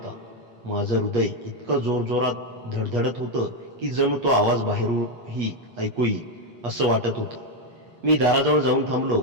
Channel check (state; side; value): late; left; 8.4 ms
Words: माझं हृदय इतकं जोरजोरात धडधडत होतं की जणू तो आवाज बाहेरूनही ऐकू येईल असं वाटत होतं. मी दाराजवळ जाऊन थांबलो